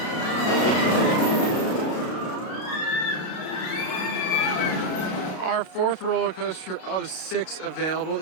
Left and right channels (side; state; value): right; late; 33 ms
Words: Our 4th roller coaster of 6 available